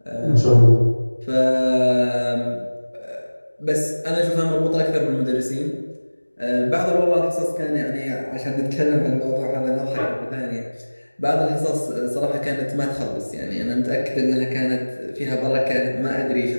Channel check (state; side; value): inverted; both; correlation -1.00